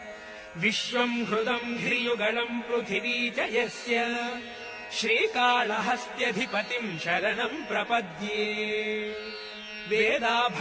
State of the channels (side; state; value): both; identical; correlation 1.00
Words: विश्वम् हृदम् धिर्युगलम् पृथिवी च यस्य श्रीकाళहस्त्यधिपतिम् शरणम् प्रपद्ये वेदा